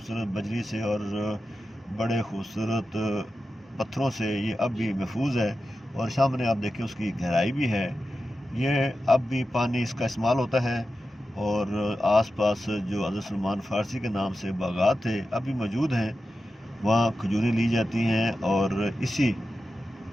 بجری سے اور بڑے خوبصورت پتھروں سے یہ اب بھی محفوظ ہے، اور سامنے آپ دیکھیں اس کی گہرائی بھی ہے۔ یہ اب بھی پانی اس کا استعمال ہوتا ہے، اور آس پاس جو حضرت سلمان فارسی کے نام سے باغات تھے اب بھی موجود ہیں، وہاں کھجوریں لی جاتی ہیں اور اسی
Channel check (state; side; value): normal; both; correlation 0.92